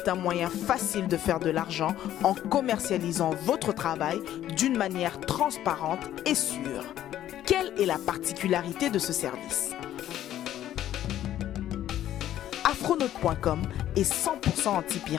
un moyen facile de faire de l'argent en commercialisant votre travail d'une manière transparente et sûre. Quelle est la particularité de ce service? Afronote.com est 100%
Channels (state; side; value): quieter; right; 12.2 dB